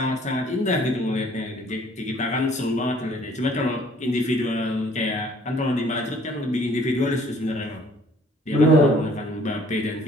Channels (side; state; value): both; normal; correlation 0.57